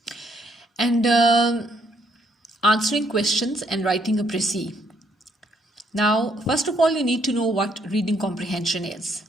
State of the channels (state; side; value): normal; both; correlation 0.70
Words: and answering questions and writing a précis. Now, first of all, you need to know what reading comprehension is.